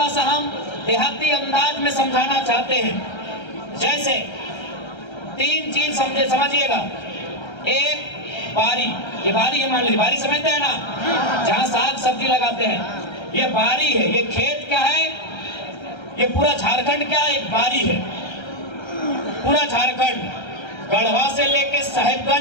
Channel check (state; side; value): late; right; 1.3 ms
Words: सा हम देहाती अंदाज में समझाना चाहते हैं। जैसे तीन चीज समझिएगा एक बारी, ये बारी है, मान लीजिए बारी समझते हैं ना, जहाँ साग सब्जी लगाते हैं, ये बारी है। ये खेत क्या है, ये पूरा झारखंड क्या है, एक बारी है। पूरा झारखंड गढ़वा से लेके